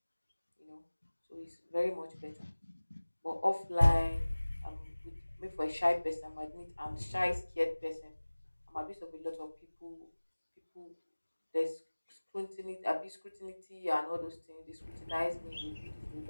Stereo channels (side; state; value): both; inverted; correlation -1.00